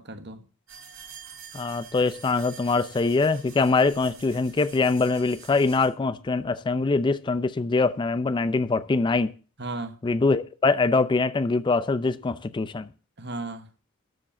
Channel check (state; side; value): quieter; right; 3.2 dB